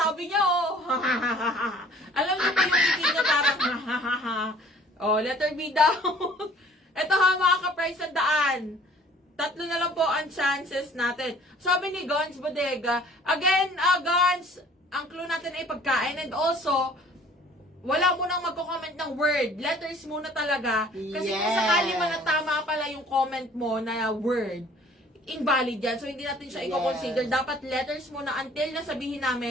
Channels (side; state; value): both; normal; correlation 0.53